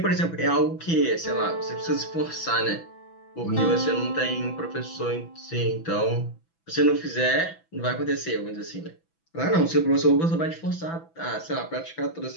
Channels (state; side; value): late; right; 6.0 ms